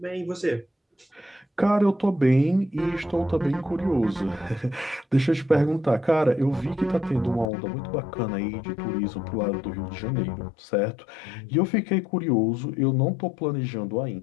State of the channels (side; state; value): right; drops out; at 7.5 s